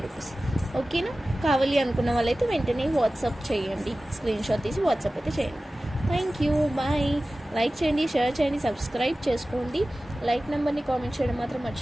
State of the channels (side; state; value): both; normal; correlation 0.96